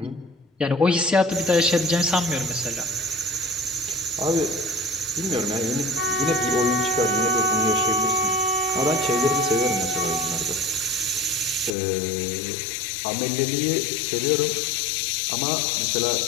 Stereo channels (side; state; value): right; drops out; at 11.7 s